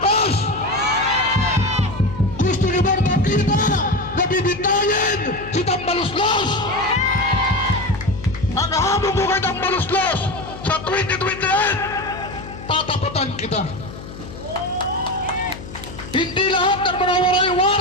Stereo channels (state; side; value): noise; left; hum, 13 dB below the sound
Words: Gusto nyo bang makita na bibitayin si Tambaluslos? Ang hamon ko kay Tambaluslos sa 2028, tatapatan kita. Hindi lahat ng mga